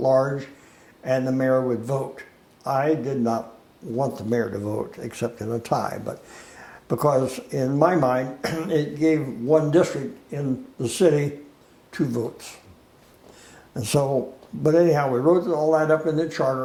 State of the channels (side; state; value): both; identical; correlation 1.00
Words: and the mayor would vote. I did not want the mayor to vote, except in a tie, but because in my mind, it gave one district in the city 2 votes. And so, but anyhow, we wrote all that up in the